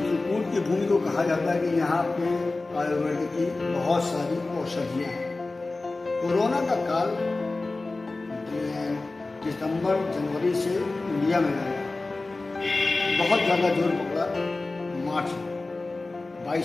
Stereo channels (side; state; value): right; quieter; 3.3 dB